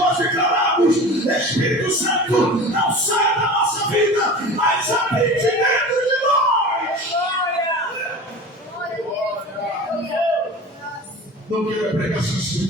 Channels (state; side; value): normal; both; correlation 0.35